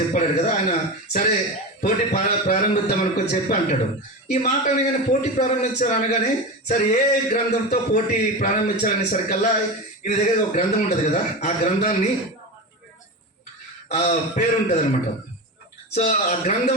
చెప్పాడు కదా ఆయన, సరే పోటీ ప్రారంభిద్దాం అనుకొని చెప్పి అంటాడు. ఈ మాట అనగానే పోటీ ప్రారంభించారు అనగానే, సరే ఏ గ్రంథంతో పోటీ ప్రారంభించాలనేసరికల్లా ఈయన దగ్గర ఒక గ్రంథం ఉంటుంది కదా, ఆ గ్రంథాన్ని పేరు ఉంటుంది అనమాట. సో ఆ గ్రంథం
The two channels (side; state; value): both; normal; correlation 0.23